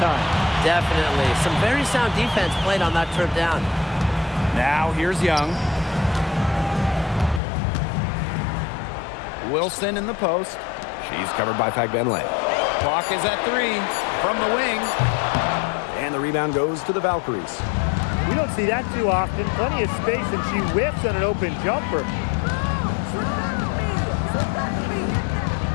time. Definitely. Some very sound defense played on that trip down. Now here's Young. Wilson in the post. She's covered by Fagbenle. Clock is at 3 from the wing. And the rebound goes to the Valkyries. We don't see that too often. Plenty of space, and she whips on an open jumper.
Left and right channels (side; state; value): right; drops out; at 7.4 s